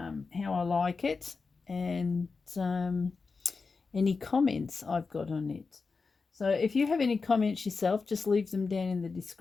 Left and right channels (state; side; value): quieter; right; 4.5 dB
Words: how I like it and any comments I've got on it. So if you have any comments yourself, just leave them down in the